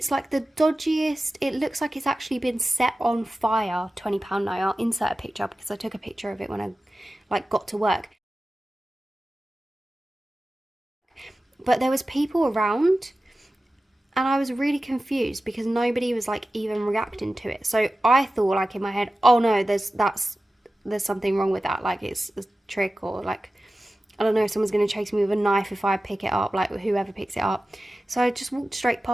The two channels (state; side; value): normal; both; correlation 0.95